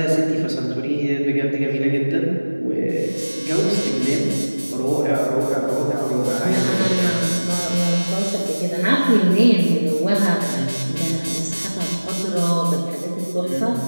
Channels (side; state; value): both; inverted; correlation -1.00